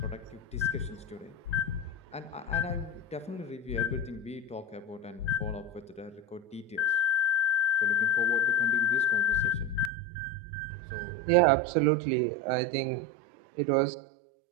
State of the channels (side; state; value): left; drops out; at 9.9 s